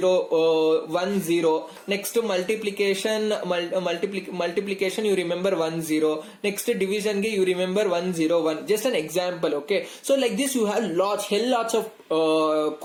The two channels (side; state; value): both; identical; correlation 1.00